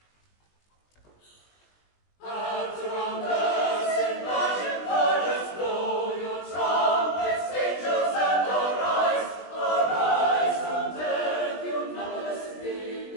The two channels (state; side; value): late; right; 20 ms